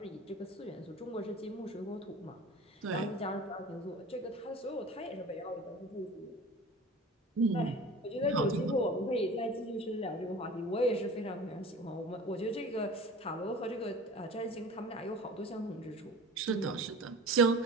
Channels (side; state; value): both; normal; correlation 0.39